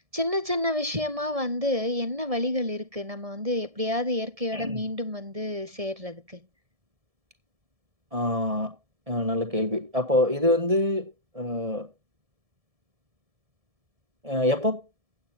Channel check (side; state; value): left; late; 1.7 ms